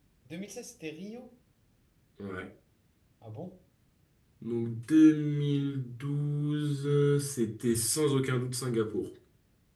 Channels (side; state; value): both; identical; correlation 1.00